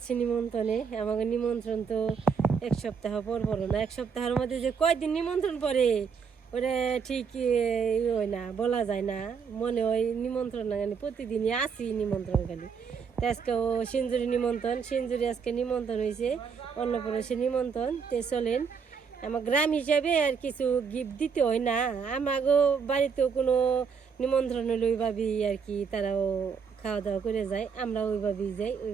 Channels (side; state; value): left; quieter; 6.2 dB